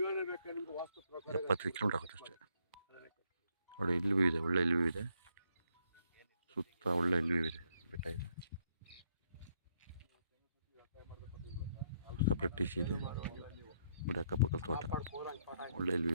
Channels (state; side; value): inverted; both; correlation -0.72